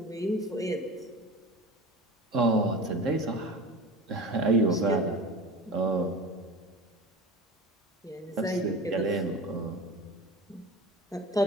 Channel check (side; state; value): both; normal; correlation 0.33